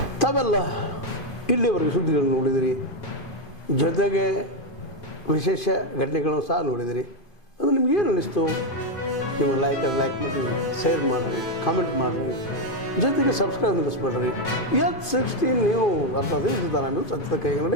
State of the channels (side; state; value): right; late; 2.5 ms